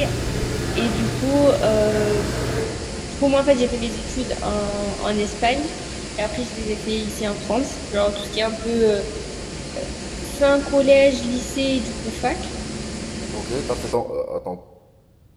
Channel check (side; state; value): both; identical; correlation 1.00